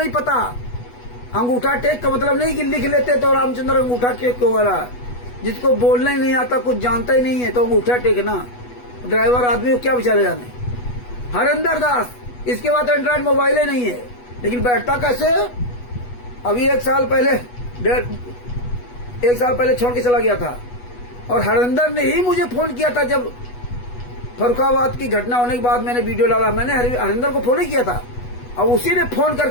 पता। अंगूठा टेक का मतलब नहीं कि लिख लेते तो रामचंद्र अंगूठा टेक क्यों हो रहा है। जिसको बोलना ही नहीं आता, कुछ जानता ही नहीं है, तो अंगूठा टेक ना, ड्राइवर आदमी को क्या बेचारे जाने। हरिंदर दास, इसके बाद एंड्रॉइड मोबाइल ही नहीं है, लेकिन बैठता कैसे। अभी 1 साल पहले छोड़ के चला गया था, और हरिंदर ने ही मुझे फोन किया था। जब फरुखाबाद की घटना होने के बाद मैंने वीडियो डाला, मैंने हरिंदर को फोन ही किया था, और उसी ने फोन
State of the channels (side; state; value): right; late; 8.2 ms